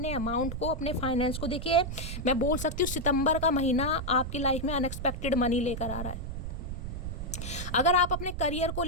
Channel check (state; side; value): noise; right; rumble, 6 dB below the sound